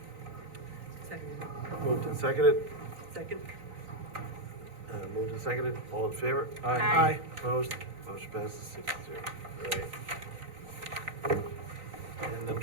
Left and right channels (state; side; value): late; left; 3.9 ms